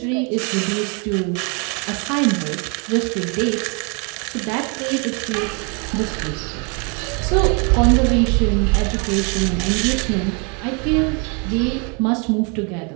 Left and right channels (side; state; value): left; quieter; 34.7 dB